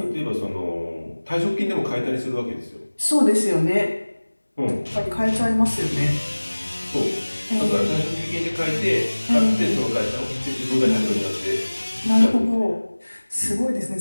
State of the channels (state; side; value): inverted; both; correlation -1.00